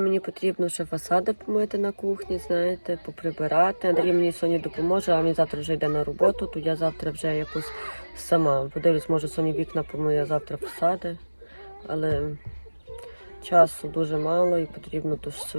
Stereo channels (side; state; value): both; inverted; correlation -1.00